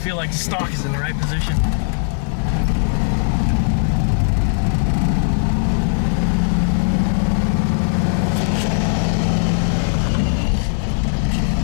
like the stock is in the right position.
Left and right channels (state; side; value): silent; right; digital silence